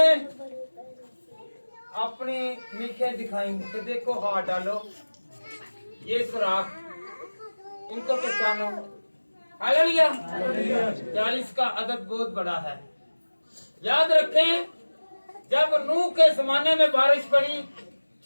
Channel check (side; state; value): both; inverted; correlation -1.00